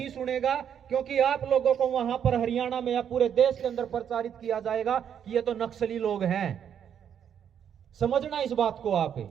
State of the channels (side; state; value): left; quieter; 8.7 dB